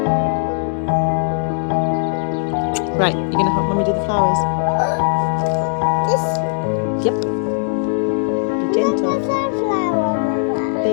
Right, you're going to help Mummy do the flowers. This Yep. Be gentle. sunflower.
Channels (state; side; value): silent; right; digital silence